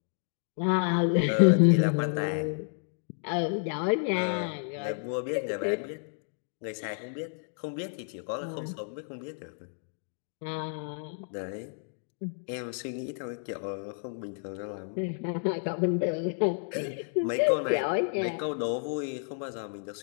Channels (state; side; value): silent; right; 57 dB below the other